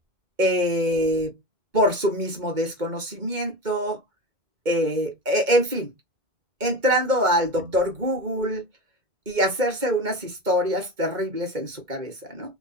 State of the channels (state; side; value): late; left; 2.2 ms